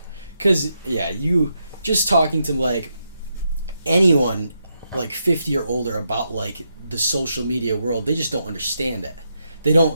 Because, you just talking to, like, anyone, like, 50 or older about, like, the social media world, they just don't understand it. They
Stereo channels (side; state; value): both; inverted; correlation -0.82